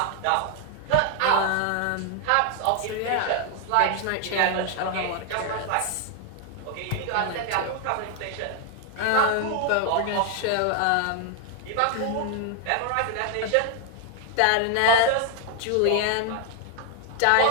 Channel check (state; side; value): different; both; correlation 0.00